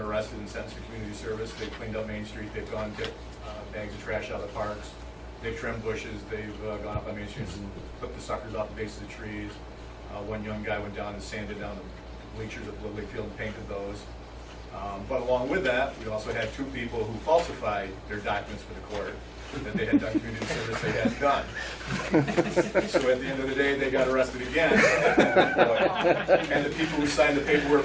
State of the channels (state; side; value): identical; both; correlation 1.00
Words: arrested and sentenced to community service. They've cleaned up Main Street, they've gone to bags of trash out of the parks, they've trimmed bushes, they've gone up on Main Street and clipped the suckers off the base of the trees. One young guy went down and sanded down the bleachers at Lily Field and painted those. But along with that, we also had 2 people who falsified their documents for the court that they had done community service they hadn't done. So at the end of the day, they got arrested again. And the people who signed the paperwork